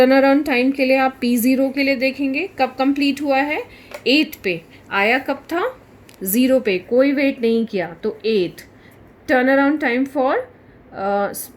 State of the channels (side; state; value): both; identical; correlation 1.00